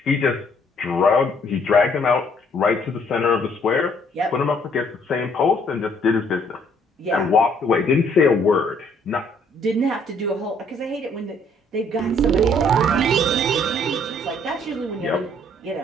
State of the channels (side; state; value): both; normal; correlation 0.64